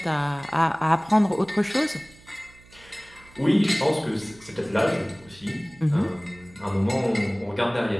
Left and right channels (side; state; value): right; noise; hum, 25 dB below the sound